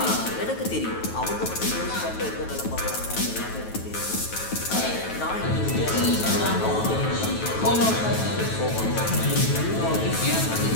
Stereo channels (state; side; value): late; right; 9.2 ms